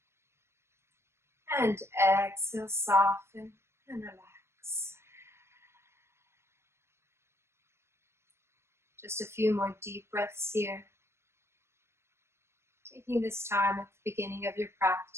And exhale, soften and relax. Just a few more deep breaths here. Taking this time at the beginning of your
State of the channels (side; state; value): left; late; 0.13 ms